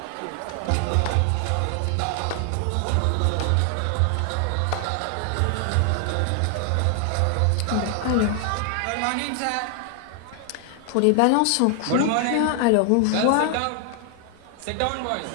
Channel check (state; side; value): different; both; correlation 0.00